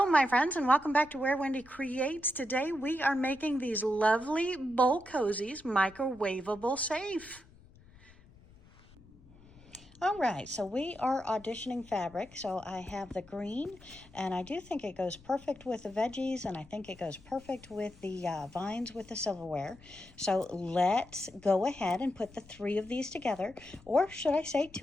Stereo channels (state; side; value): noise; left; rumble, 24 dB below the sound